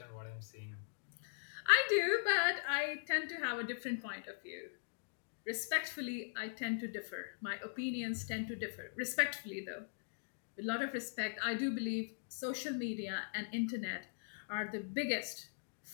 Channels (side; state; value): right; silent; digital silence